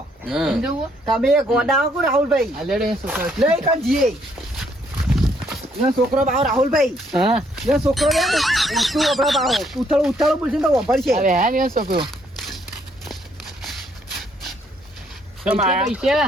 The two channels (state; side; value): normal; both; correlation 0.69